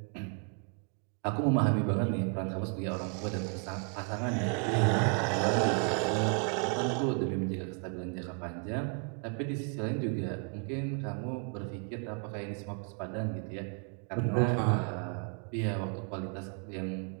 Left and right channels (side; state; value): left; quieter; 38.9 dB